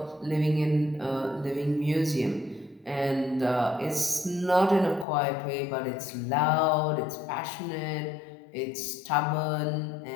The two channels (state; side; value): drops out; right; at 5.1 s